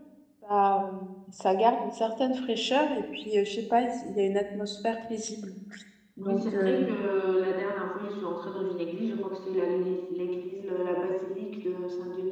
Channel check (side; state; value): both; identical; correlation 1.00